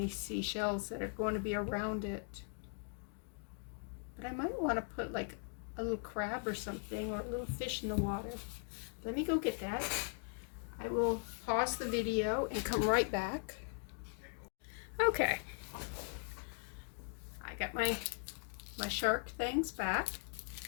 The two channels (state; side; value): silent; right; 51 dB below the other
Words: seashells that are going to be around it. But I might want to put like a little crab or something, or a little fish in the water. Let me go get that. I will pause the video and come right back. Okay, I got my shark things back,